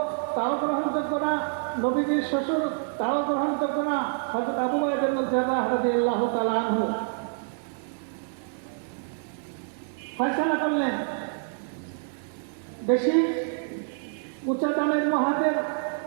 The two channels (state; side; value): silent; left; 60 dB below the other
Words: তাও গ্রহণযোগ্য না, নবীজির শ্বশুর তাও গ্রহণযোগ্য না। হযরত আবু বকর রাদিয়াল্লাহু রাদিয়াল্লাহু তাআলা আনহু ফয়সালা করলেন, বেশি উঁচা দামের মহাজের